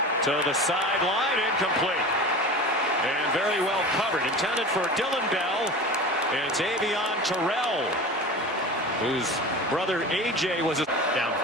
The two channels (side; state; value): both; normal; correlation 0.33